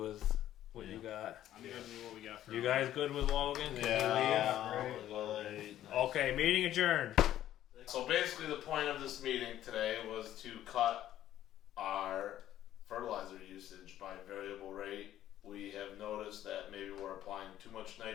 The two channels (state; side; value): quieter; right; 12.4 dB